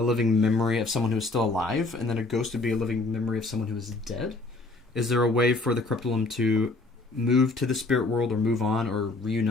living memory of someone who is still alive, and then a ghost would be a living memory of someone who is dead? Is there a way for the corruptolum to move to the spirit world or move on or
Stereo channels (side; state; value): right; quieter; 3.2 dB